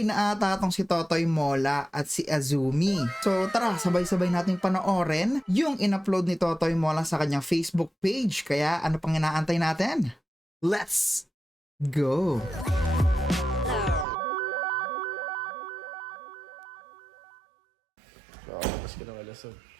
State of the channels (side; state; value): left; drops out; at 14.1 s